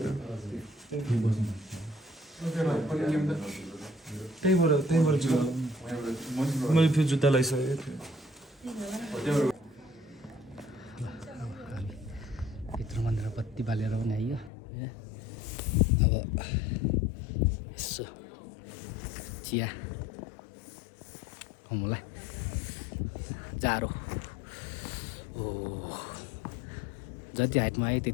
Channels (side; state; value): right; drops out; at 14.5 s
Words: त्यहीँबाट छु मैले फेरि जुत्ता लगाइसकेको थिएँ भित्र मन्दिर बत्ती बालेर पनि आइयो अब यसो चिया खाउँला जाडो ओ जति हाइटमा आयो